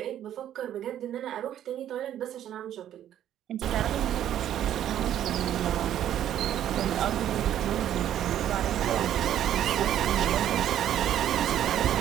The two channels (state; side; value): quieter; left; 11.1 dB